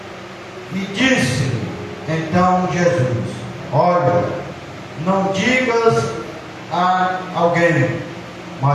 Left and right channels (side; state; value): both; identical; correlation 1.00